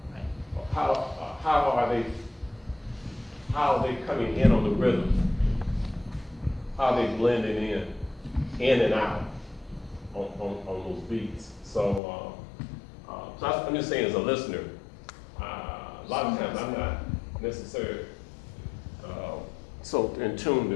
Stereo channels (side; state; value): right; drops out; at 12.0 s